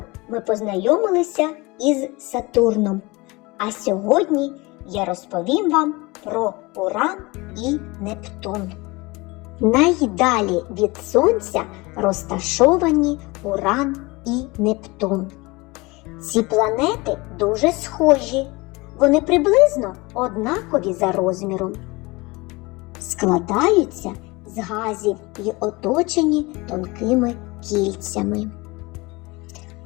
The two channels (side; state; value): right; quieter; 23.8 dB